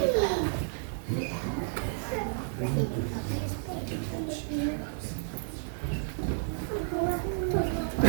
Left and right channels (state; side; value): silent; left; digital silence